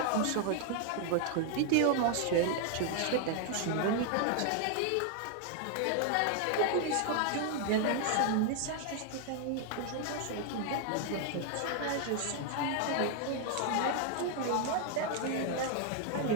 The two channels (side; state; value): both; different; correlation 0.00